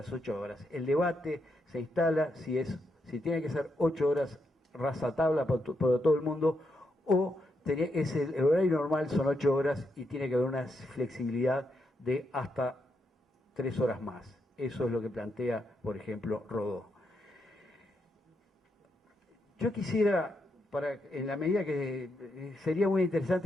8 horas. El debate se instala si tiene que ser 8 horas rajatabla para todo el mundo, o el horario normal son 8 horas y tiene que haber una flexibilidad de hasta 3 horas más. Eso es lo que plantea, por ejemplo, Rodó. Yo quisiera, en la medida que sería muy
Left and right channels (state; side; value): normal; both; correlation 0.81